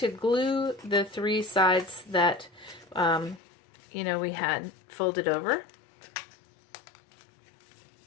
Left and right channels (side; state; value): right; drops out; at 3.4 s